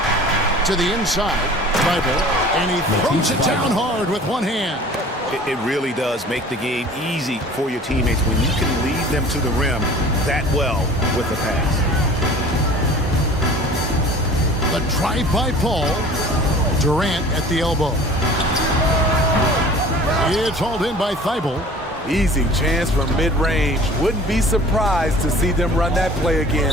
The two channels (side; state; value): both; normal; correlation 0.45